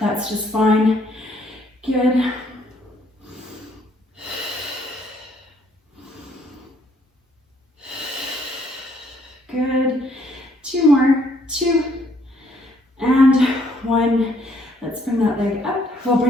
just fine. Good. Good. 2 more. 2 and 1. Let's bring that leg up. We'll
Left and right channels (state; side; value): normal; both; correlation 0.67